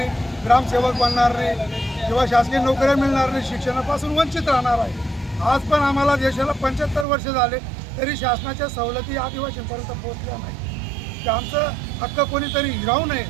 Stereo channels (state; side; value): drops out; left; at 7.1 s